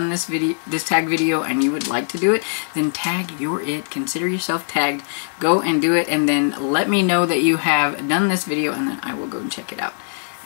this tag video and you would like to do it, then tag your it. Consider yourself tagged. Go and do it, and then let me know that you have done this video, and then I will go and check it out.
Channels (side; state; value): right; silent; digital silence